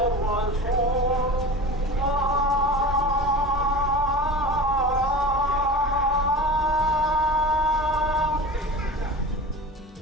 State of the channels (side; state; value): both; normal; correlation 0.33